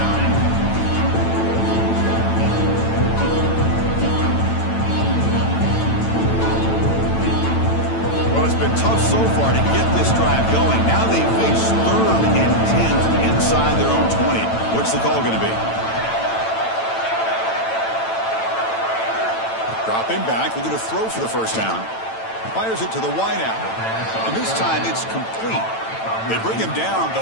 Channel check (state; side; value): late; right; 9.0 ms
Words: Tough so far to get this drive going. Now they face 3rd and 10 inside their own 20. What's the call going to be? Dropping back, looking to throw for the 1st down. Fires it to the wideout. And this time it's complete. They bring him down,